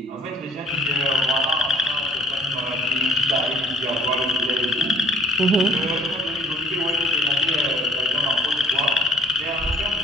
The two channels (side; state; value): both; normal; correlation 0.57